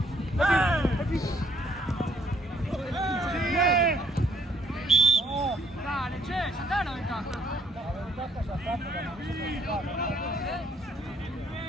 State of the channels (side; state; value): both; normal; correlation 0.66